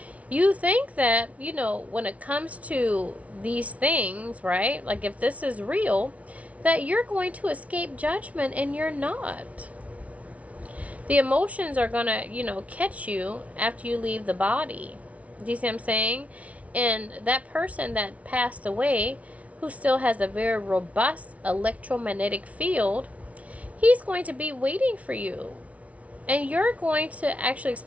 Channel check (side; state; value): left; late; 0.066 ms